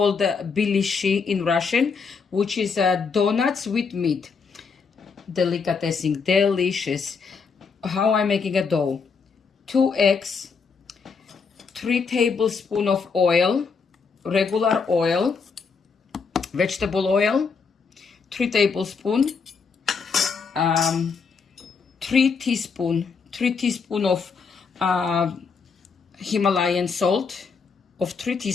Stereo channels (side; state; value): right; quieter; 5.3 dB